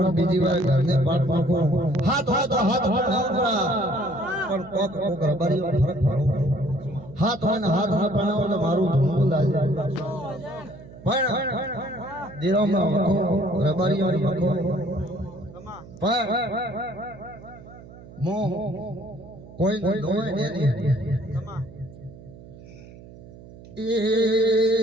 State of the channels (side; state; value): right; noise; hum, 18 dB below the sound